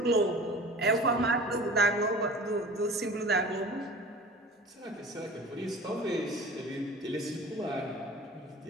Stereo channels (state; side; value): normal; both; correlation 0.40